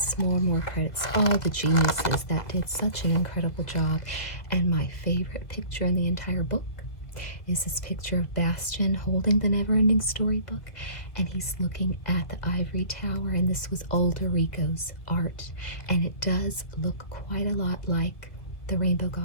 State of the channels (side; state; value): right; late; 2.0 ms